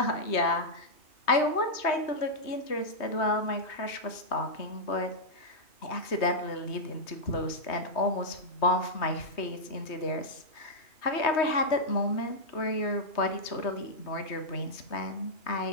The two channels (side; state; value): right; late; 3.2 ms